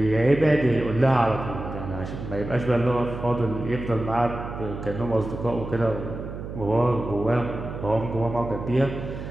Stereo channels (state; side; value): noise; right; hum, 8 dB below the sound